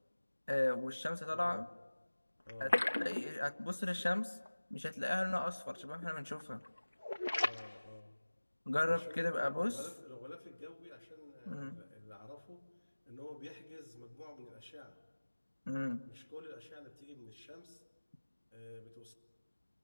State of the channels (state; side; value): inverted; both; correlation -1.00